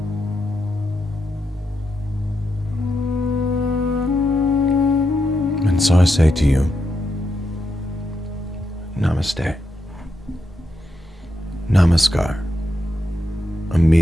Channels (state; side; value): normal; both; correlation 0.84